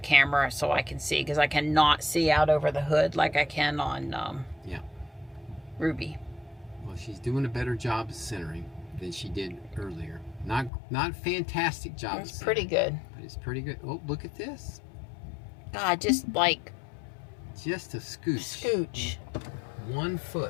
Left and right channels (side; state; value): right; drops out; at 10.7 s